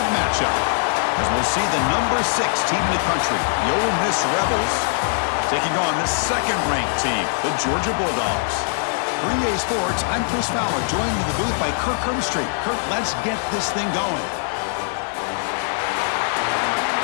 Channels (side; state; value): right; silent; 61 dB below the other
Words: matchup, as we'll see the number 6 team in the country, the Ole Miss Rebels, taking on the second-ranked team, the Georgia Bulldogs. For EA Sports, I'm Chris Fowler, joined in the booth by Kirk Herbstreit. Kirk, let's get this thing going.